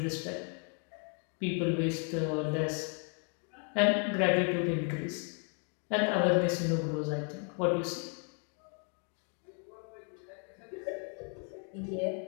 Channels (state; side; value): quieter; right; 39.6 dB